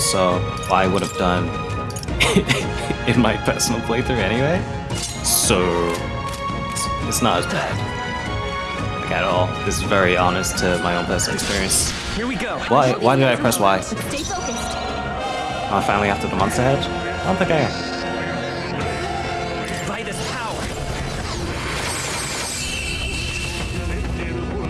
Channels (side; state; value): both; identical; correlation 1.00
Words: what I would have done in my personal playthrough anyway. So it's not as bad. Like at all. This is very honest to my own personal experience. Here we go. Why did I press Y? Stay focused. Oh, finally after the monster head? I don't think I am. By this power.